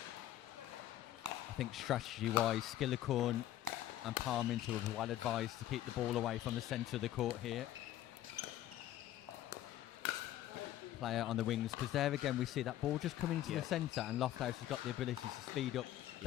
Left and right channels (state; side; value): quieter; right; 13.2 dB